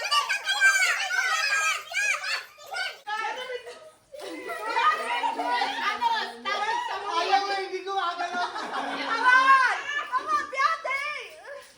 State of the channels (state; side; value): identical; both; correlation 1.00